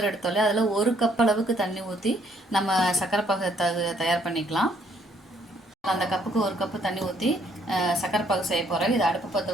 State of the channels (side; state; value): both; normal; correlation 0.67